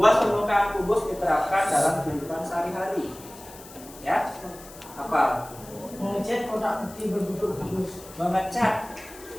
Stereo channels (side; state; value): left; noise; hiss, 19 dB below the sound